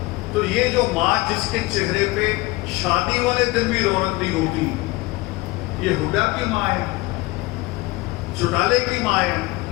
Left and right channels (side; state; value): right; quieter; 21.2 dB